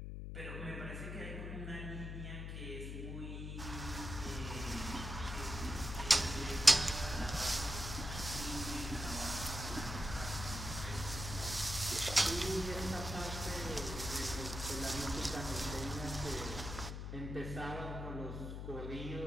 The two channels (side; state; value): left; noise; hum, 5 dB below the sound